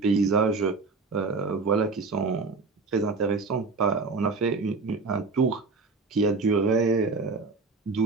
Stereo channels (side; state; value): left; quieter; 4.1 dB